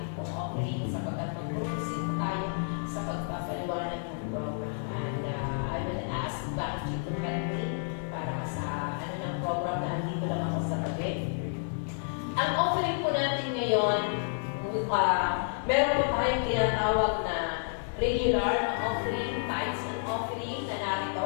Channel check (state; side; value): silent; right; digital silence